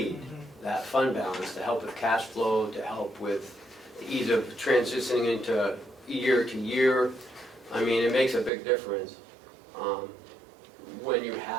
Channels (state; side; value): drops out; left; at 8.5 s